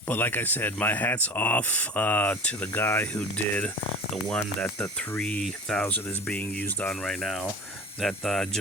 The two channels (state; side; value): normal; both; correlation 0.37